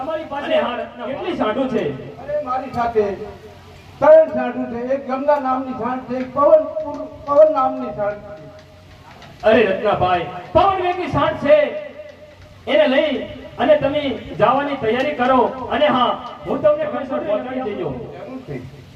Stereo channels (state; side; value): identical; both; correlation 1.00